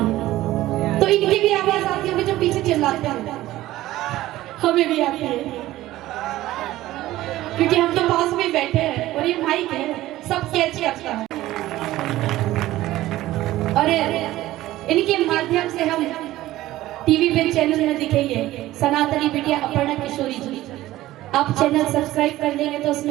तो इनकी भी आवाज आती होगी जो पीछे चिल्लाते हैं? हमें भी आती है, क्योंकि हम तो पास में बैठे हैं और ये माइक है, सब कैच करता है। और इनके माध्यम से हम टीवी पे चैनल में दिखेंगे। सनातनी बिटिया अपर्णा किशोरी जी, आप चैनल सब्सक्राइब कर लेंगे तो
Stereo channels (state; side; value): quieter; left; 15.8 dB